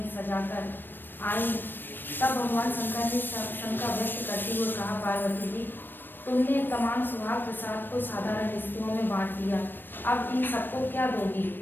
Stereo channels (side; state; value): right; late; 0.094 ms